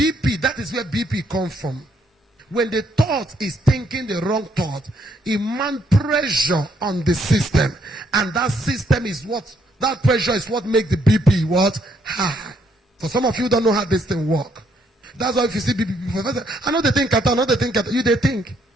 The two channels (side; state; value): both; normal; correlation 0.71